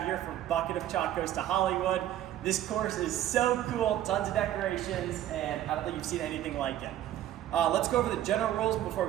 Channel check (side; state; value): left; quieter; 12.5 dB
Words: here for Bucket of Chalk Goes to Hollywood. This course is so cool, tons of decorations, and I don't think you've seen anything like it. Let's go over the general rules before